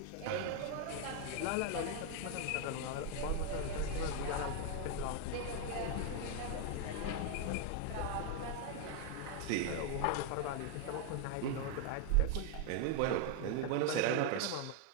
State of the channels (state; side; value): different; both; correlation 0.01